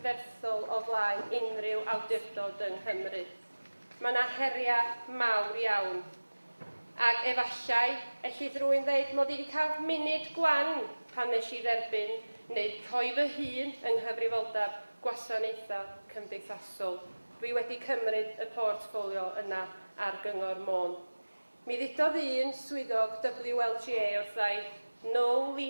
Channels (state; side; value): inverted; both; correlation -1.00